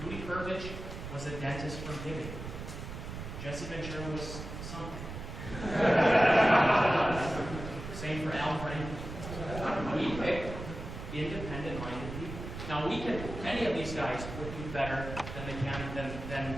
Rudy Pervich was a dentist from Hibbing. Jesse Ventura was something. Same for Al Franken. We pick independent-minded people. Now, many of these guys would do better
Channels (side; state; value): right; noise; rumble, 9 dB below the sound